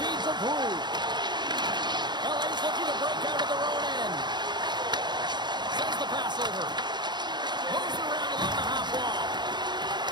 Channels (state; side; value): late; left; 0.21 ms